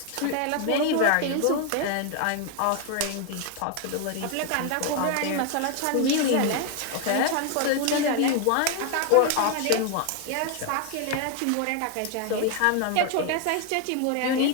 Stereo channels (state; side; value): different; both; correlation 0.01